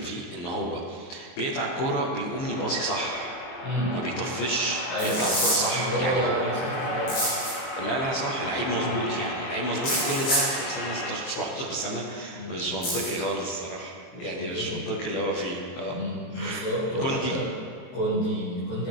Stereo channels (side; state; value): right; late; 23 ms